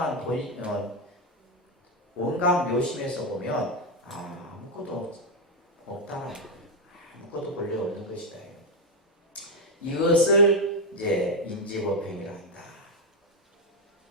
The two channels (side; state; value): both; normal; correlation 0.06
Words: 원각 묘심에서 보면 아무것도 없다. 아무것도 본래 없는 것이다. 이것을 이제 인지법행이라 한다.